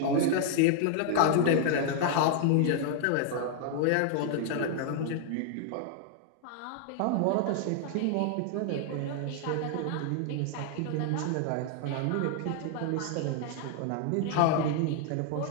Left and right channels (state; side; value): different; both; correlation 0.00